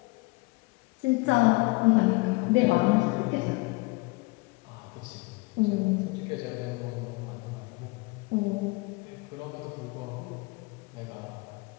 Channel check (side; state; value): right; quieter; 25.8 dB